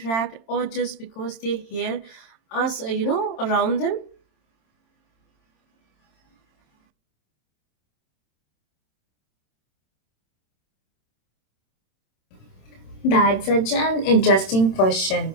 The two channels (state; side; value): late; right; 26 ms